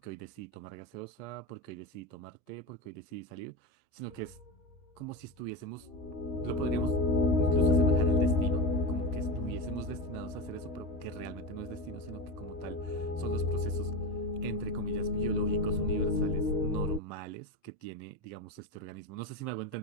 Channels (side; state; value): right; late; 13 ms